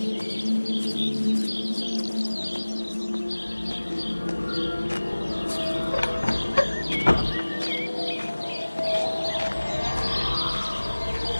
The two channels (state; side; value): inverted; both; correlation -1.00